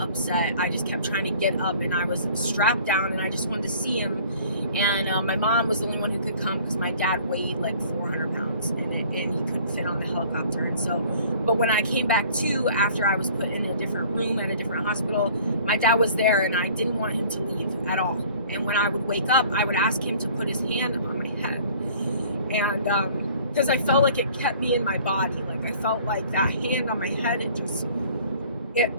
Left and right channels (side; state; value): both; inverted; correlation -0.51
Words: I just kept trying to get up, and I was strapped down, and I just wanted to see him. And my mom was the only one who could come because my dad weighed like 400 pounds, and he couldn't fit on the helicopter. And so, but when I came back to, after I was put in a different room at a different hospital, my dad was there, and I didn't want him to leave at all. And when I would wake up, I would ask him to put his hand on my head, and because I felt like it kept me in my body. Like I felt like that hand on my head,